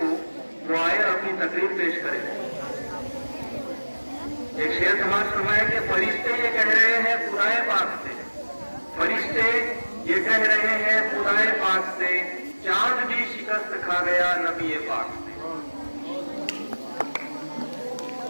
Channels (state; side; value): inverted; both; correlation -1.00